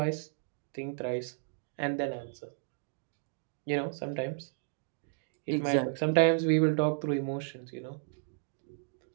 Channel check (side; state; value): left; silent; digital silence